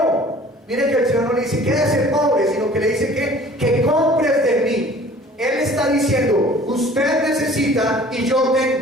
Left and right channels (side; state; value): both; normal; correlation 0.49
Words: Miren que el Señor no le dice quédese pobre, sino que le dice que compres de mí. Él está diciendo: usted necesita y yo